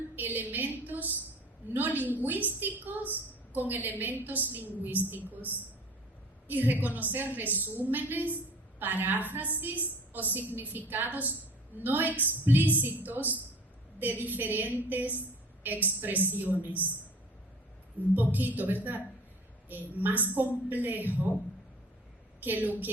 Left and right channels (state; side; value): normal; both; correlation 0.45